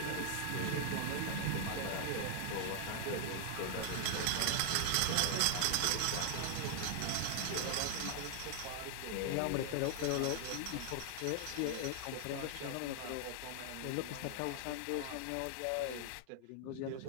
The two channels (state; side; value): different; both; correlation 0.00